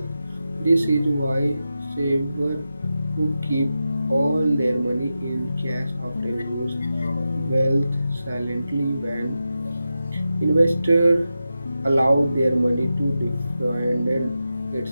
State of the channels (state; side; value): inverted; both; correlation -0.91